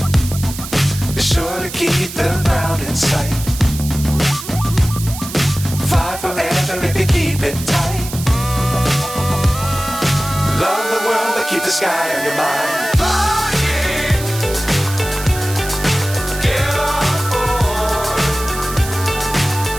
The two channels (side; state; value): right; noise; hiss, 11 dB below the sound